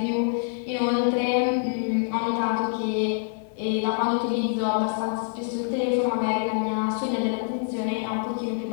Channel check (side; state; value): right; silent; digital silence